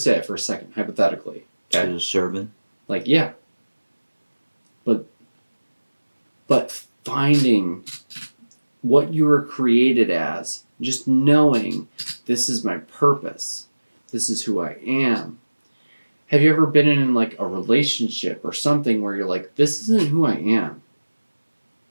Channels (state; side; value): inverted; both; correlation -1.00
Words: for a second, hypothetically. Okay. She's a servant. Like, yeah. But finding what you were created as, just knowing this is my purpose, this is who I am. Have you ever been in, like, a relationship or something where you're like, this isn't who I am?